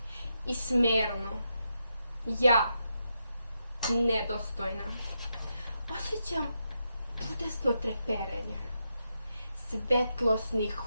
i smerno. Ja, nedostojna, osjećam čudesno treperenje. Svetlosni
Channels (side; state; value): both; inverted; correlation -0.84